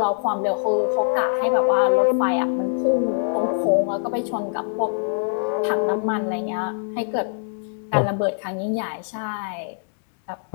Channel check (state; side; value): silent; right; digital silence